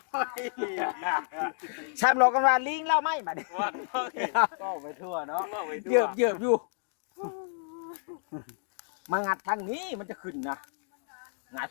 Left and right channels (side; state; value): right; silent; digital silence